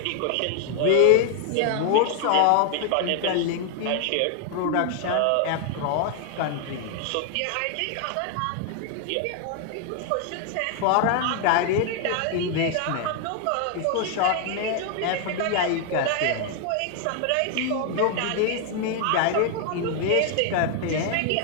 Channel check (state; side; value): different; both; correlation 0.00